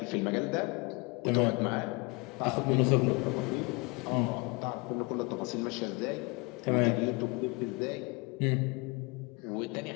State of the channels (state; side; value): quieter; right; 27.9 dB